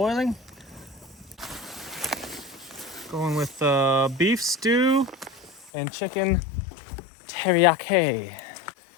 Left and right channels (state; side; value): drops out; right; at 5.7 s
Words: Going with beef stew and chicken teriyaki.